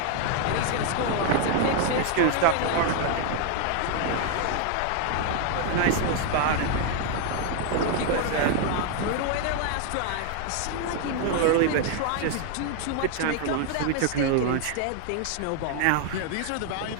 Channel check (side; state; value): both; different; correlation 0.00